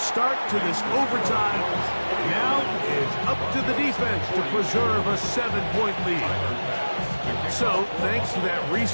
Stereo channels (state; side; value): inverted; both; correlation -1.00